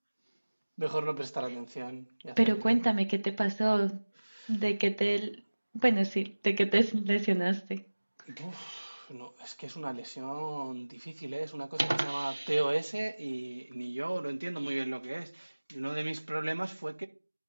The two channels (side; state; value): both; inverted; correlation -1.00